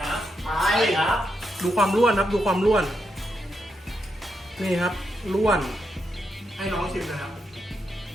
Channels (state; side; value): normal; both; correlation 0.83